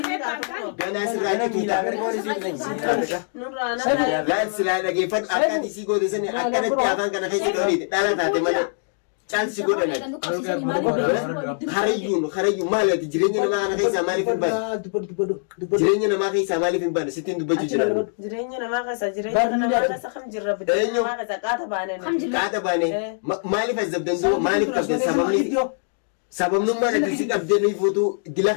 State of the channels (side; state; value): right; silent; digital silence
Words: taatu kun. Ganaa sirraa jituuta. Nurraa nama. Laan silaa dhageeffadhu akka ati sii goote sani akkanatti afaan kana keessa dhooniiti. Dhala taate malee. Caalsi godhanan. Harayyuun maali ati jireenya namaa kana keessaa maaliif hin baane? Jireenya namaa keessaa maaliif hin baane? Sittiin dubbachuu jiran. Jireenya namaa keessa kam jirra biddeen namaa keessa qaata baanee. Qaata baanee maaliif azabdan duuba maaliif qabdan sababnummaan ati si qabdee nuyi fuutuu dila